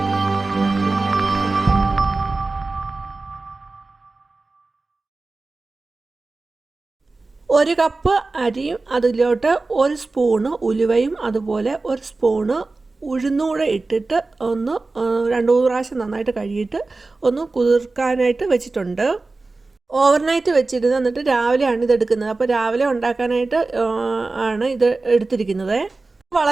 ഒരു കപ്പ് അരിയും അതിലോട്ട് ഒരു സ്പൂണ് ഉലുവയും അതുപോലെ ഒരു സ്പൂണ് ഉഴുന്നൂടെ ഇട്ടിട്ട് ഒന്ന് 2-3 പ്രാവശ്യം നന്നായിട്ട് കഴുകിയിട്ട് ഒന്ന് കുതിർക്കാനായിട്ട് വെച്ചിട്ടുണ്ട്. ഓവർനൈറ്റ് വെച്ചിരുന്ന് എന്നിട്ട് രാവിലെയാണ് ഇത് എടുക്കുന്നത്. അപ്പോൾ രാവിലെ ഉണ്ടാക്കാനായിട്ട് ആണ് ഇത് എടുത്തിരിക്കുന്നത്.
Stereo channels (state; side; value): quieter; left; 3.5 dB